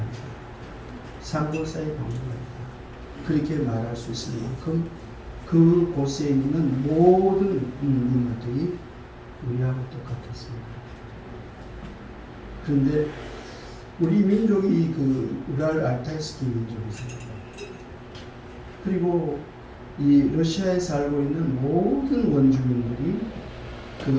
상고사의 박물관이다, 그렇게 말할 수 있을 만큼 그 곳에 있는 모든 인물들이 우리하고 똑같았습니다. 그런데 우리 민족이 그 우랄 알타이스키 민족이잖아요. 그리고 이 러시아에 살고 있는 모든 원주민들이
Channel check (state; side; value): identical; both; correlation 1.00